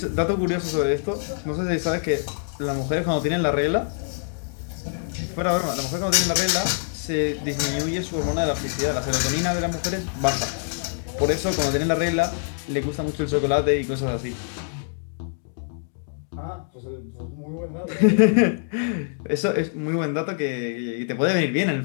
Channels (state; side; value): silent; right; digital silence